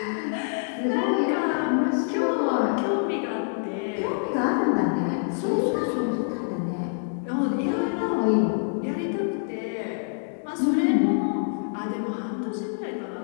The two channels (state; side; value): silent; right; 61 dB below the other